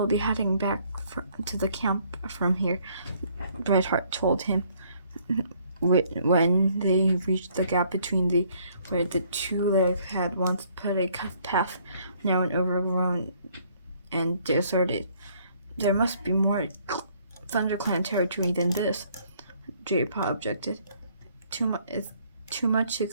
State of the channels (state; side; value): inverted; both; correlation -0.64